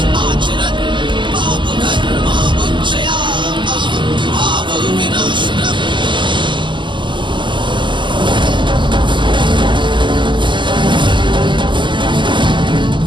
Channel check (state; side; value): late; left; 0.23 ms